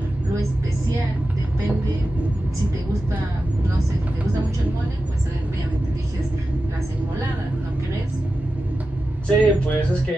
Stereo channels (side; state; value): both; normal; correlation 0.92